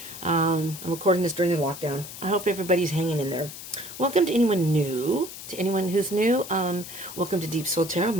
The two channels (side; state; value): left; noise; hiss, 12 dB below the sound